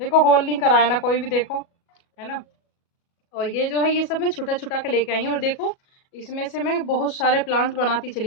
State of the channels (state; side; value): late; right; 37 ms